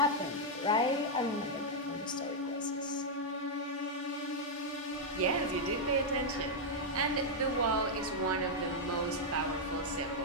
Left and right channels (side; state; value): both; normal; correlation -0.03